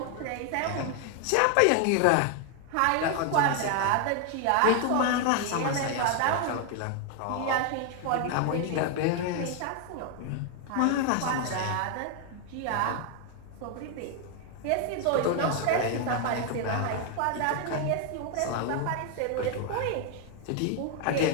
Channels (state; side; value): different; both; correlation 0.00